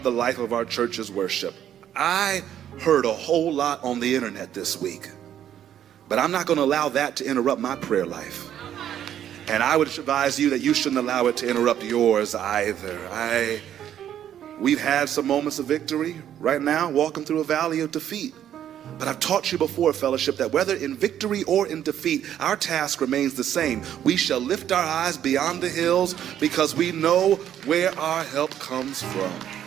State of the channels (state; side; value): quieter; left; 10.5 dB